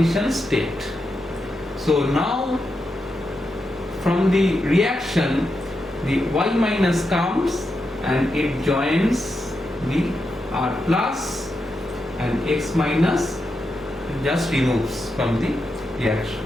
state. So now from the reaction, the Y minus comes and it joins the R plus, and X minus just removes from the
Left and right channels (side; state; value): right; noise; hum, 28 dB below the sound